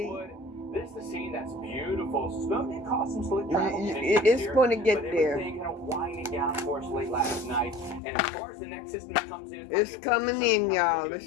This is the scene that's beautiful. Snow did cause some slick travel. It's going to get there. Everything kind of winding down for us late last night. And as far as the next system comes in, it's coming in, y'all. It's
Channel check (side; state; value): right; drops out; at 8.0 s